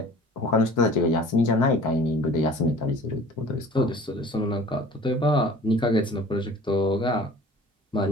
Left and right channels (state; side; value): normal; both; correlation 0.46